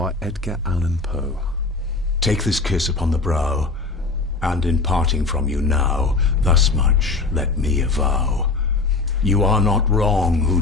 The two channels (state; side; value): quieter; right; 3.7 dB